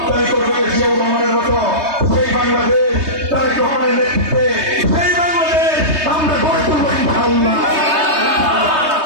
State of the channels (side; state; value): left; late; 3.2 ms